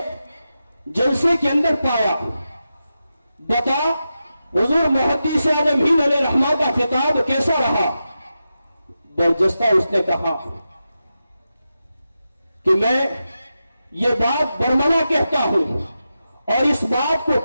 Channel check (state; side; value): inverted; both; correlation -0.90